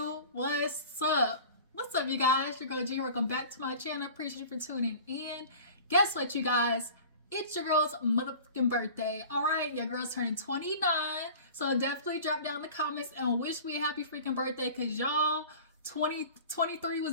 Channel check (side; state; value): both; inverted; correlation -0.41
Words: What's up? What's up, you guys? Your girl G. Welcome back to my channel. Appreciate you for tuning in. Guess what, you guys? It's your girl's motherfucking birthday. Alright, your girl's turning 29. So definitely drop down in the comments and wish me a happy freaking birthday, because y'all, 2023